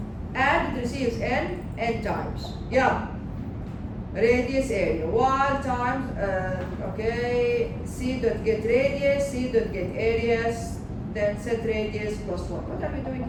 And it receives n times. Yeah. Radius area. While times, okay, C dot get radius, C dot get areas, then set radius plus 1. What are we doing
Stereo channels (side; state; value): both; identical; correlation 1.00